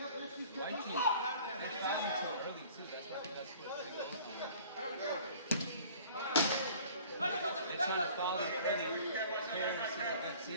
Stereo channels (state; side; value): inverted; both; correlation -0.49